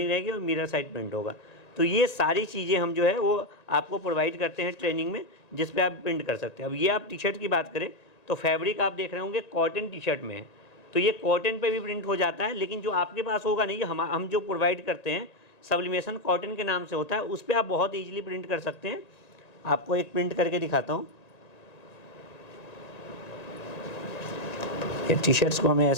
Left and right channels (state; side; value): late; right; 1.9 ms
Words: रहेगी और मिरर साइड प्रिंट होगा। तो ये सारी चीज़ें हम जो है वो आपको प्रोवाइड करते हैं ट्रेनिंग में, जिस पे आप प्रिंट कर सकते हैं। अब ये आप टी शर्ट की बात करें तो फैब्रिक आप देख रहे होंगे कॉटन टी शर्ट में है, तो ये कॉटन पे भी प्रिंट हो जाता है। लेकिन जो आपके पास होगा नहीं, हम जो प्रोवाइड करते हैं सब्लिमेशन कॉटन के नाम से होता है, उस पर आप बहुत ईजिली प्रिंट कर सकते हैं। आपको एक प्रिंट करके दिखाता हूँ। ये टी शर्ट्स को हमें